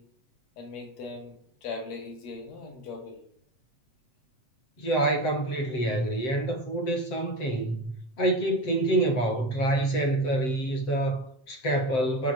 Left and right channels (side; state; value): right; late; 7.7 ms